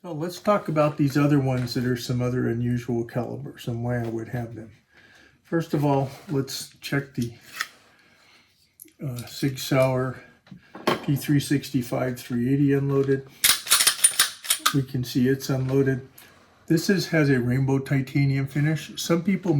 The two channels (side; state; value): both; identical; correlation 1.00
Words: So let's talk about these other ones that are some other unusual calibers and why I would have them. First of all, let's check the Sig Sauer P365 380 unloaded. We can see it's unloaded. This has a rainbow titanium finish. Some people